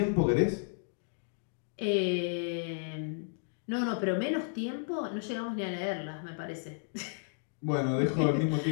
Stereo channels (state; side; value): silent; right; digital silence